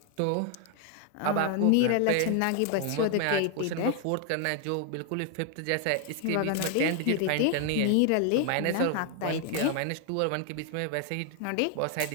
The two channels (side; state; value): both; different; correlation 0.00